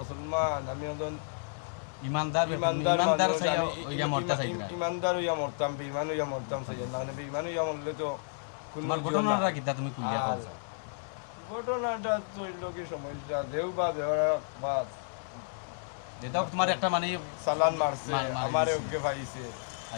আমি একজন ইমানদার ইমানদার ইমানদার মানুষ, চাই আমি ওইয়া মরতে চাই না ইমানদার হইয়া মরতাম বেইমান হইয়া মরতাম চাই না মানে বেইমান হইয়া মরলে তো কোনো তোমার ঘটনাটা কিতা তুমি কুলিয়া আর করছো ঘটনাটা তো হইল কি সমস্যা দেও বা দেওয়ার বা যেটাও তোমার একটা মানে চালান মারছে মারছে। আমার ওকে পাইছে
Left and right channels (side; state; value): right; silent; digital silence